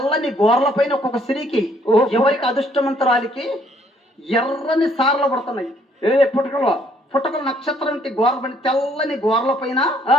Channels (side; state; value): both; normal; correlation 0.64